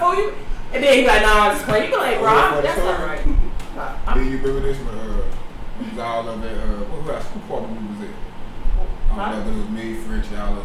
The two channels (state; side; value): identical; both; correlation 1.00